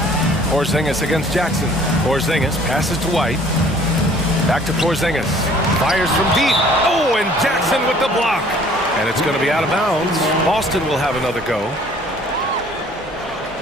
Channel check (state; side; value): normal; both; correlation 0.54